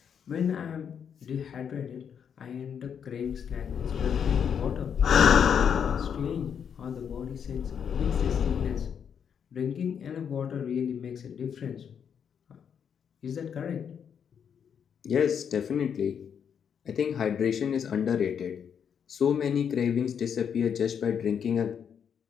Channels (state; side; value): quieter; right; 7.7 dB